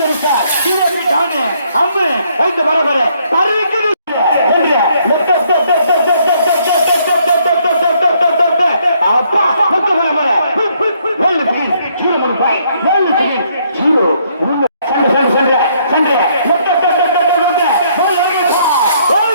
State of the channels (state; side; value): inverted; both; correlation -0.69